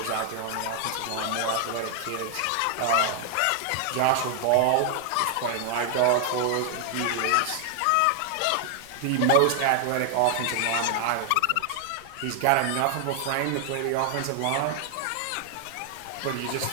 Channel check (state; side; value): different; both; correlation 0.00